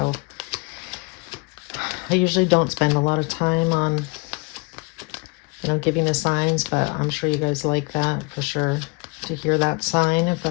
I usually don't spend a lot of time on, you know, giving the signs, but I'm sure you guys like that for sure, to hear that sign if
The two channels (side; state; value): right; quieter; 29.0 dB